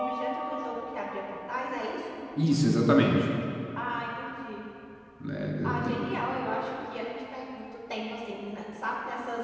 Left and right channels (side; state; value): both; identical; correlation 1.00